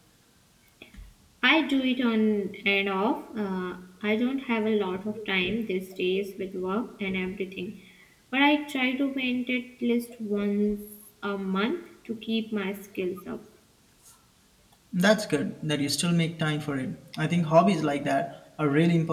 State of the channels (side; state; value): both; identical; correlation 1.00